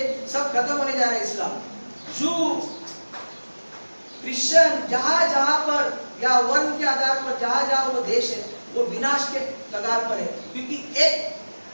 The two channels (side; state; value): both; inverted; correlation -1.00